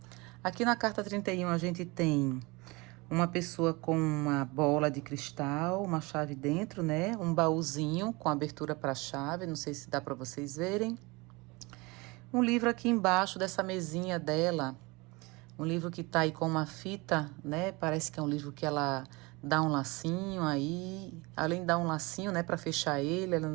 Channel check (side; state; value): left; quieter; 25.0 dB